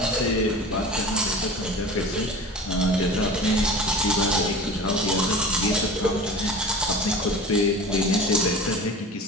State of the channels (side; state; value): both; normal; correlation 0.36